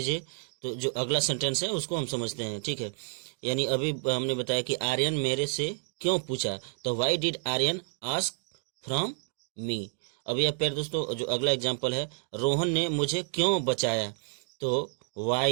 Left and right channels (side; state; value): left; silent; digital silence